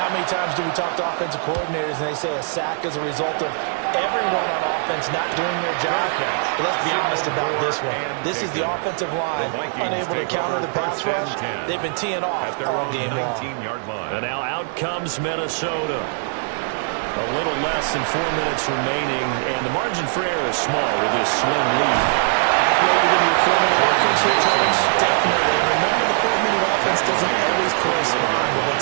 many times do we talk to offensive coordinators and they say a sack is a result of everyone on offense not doing their job? But let's be honest about this one. This is the offensive line unable to counter the pass rush. They've been teeing off all game long. And now out comes Minnesota. A little less than 4 minutes remaining, and the margin for error is small with this slim lead. Operated in your 4-minute offense here, Charles? Definitely. Remember, the 4-minute offense doesn't always correspond to what's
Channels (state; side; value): silent; left; 61 dB below the other